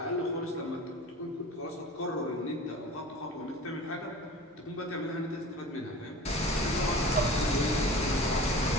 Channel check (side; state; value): both; normal; correlation 0.38